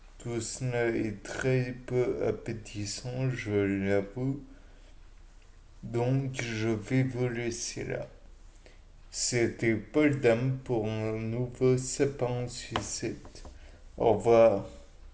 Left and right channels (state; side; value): identical; both; correlation 1.00